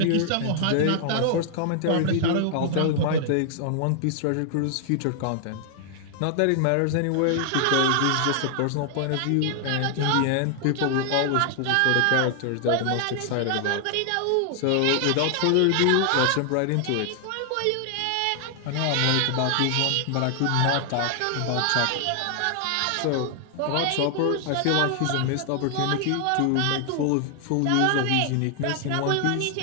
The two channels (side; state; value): both; different; correlation 0.00